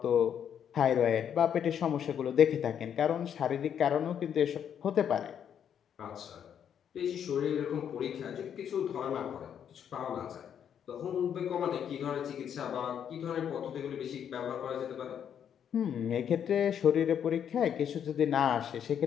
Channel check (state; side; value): quieter; right; 8.7 dB